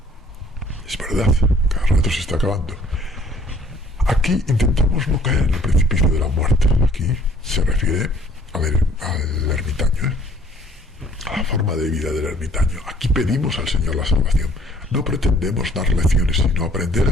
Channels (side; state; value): both; normal; correlation 0.58